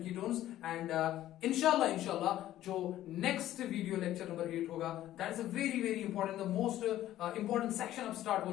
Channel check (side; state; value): right; quieter; 13.5 dB